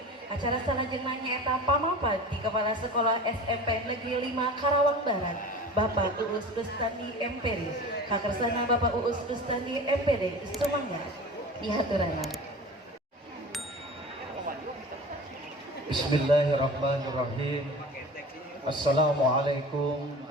acara salajengna nyaeta pamapat di Kepala Sekolah SMP Negeri 5 Karawang Barat, Bapak Uus Rustandi MPD, kakersana Bapak Uus Rustandi MPD, sumangga dihaturanan. Bismillahirrahmanirrahim. Assalamualaikum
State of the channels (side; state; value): both; normal; correlation 0.36